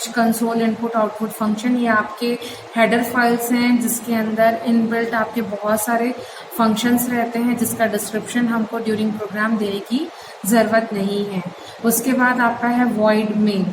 console input output function, ये आपके हेडर फाइल्स हैं जिसके अंदर इनबिल्ट आपके बहुत सारे फंक्शंस रहते हैं जिसका डिस्क्रिप्शन हमको ड्यूरिंग प्रोग्राम देने की ज़रूरत नहीं है। उसके बाद आपका है void main,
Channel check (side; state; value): both; identical; correlation 1.00